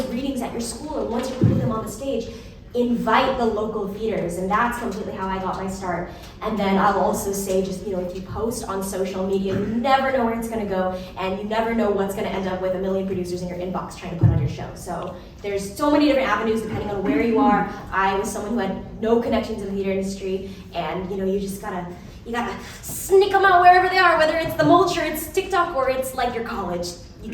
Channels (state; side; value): identical; both; correlation 1.00